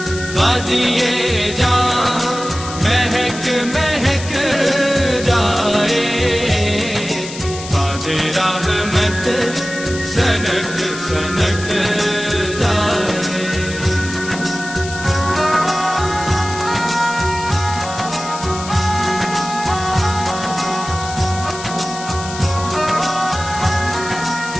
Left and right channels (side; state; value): left; noise; hiss, 11 dB below the sound